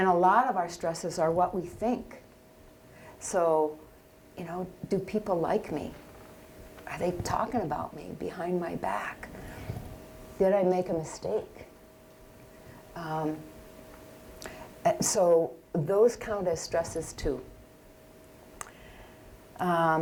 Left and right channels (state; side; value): identical; both; correlation 1.00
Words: a lot of our stresses are what we think. So, you know, do people like me? Are they talking about me behind my back? Did I make a mistake? So those count as stresses too.